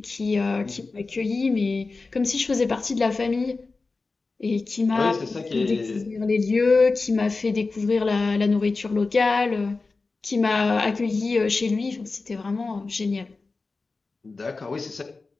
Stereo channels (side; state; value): right; quieter; 3.9 dB